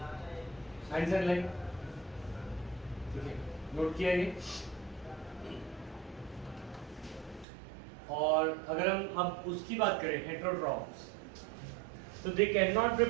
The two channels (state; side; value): drops out; left; at 7.5 s